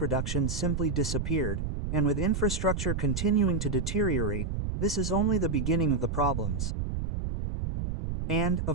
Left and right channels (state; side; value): noise; right; rumble, 3 dB below the sound